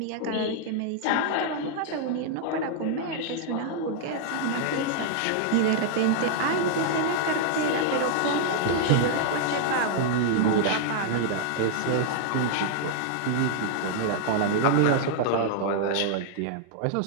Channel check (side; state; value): both; different; correlation -0.01